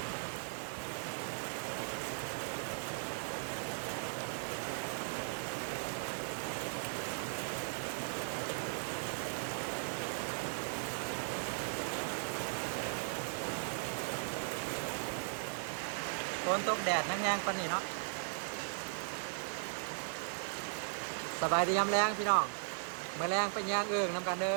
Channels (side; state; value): left; silent; 52 dB below the other